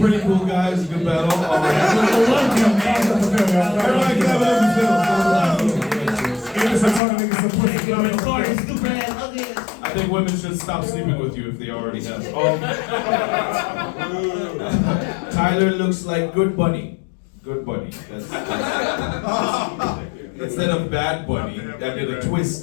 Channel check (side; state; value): right; drops out; at 7.0 s